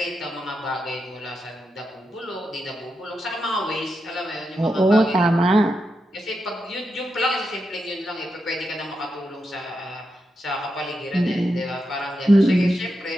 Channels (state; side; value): normal; both; correlation 0.86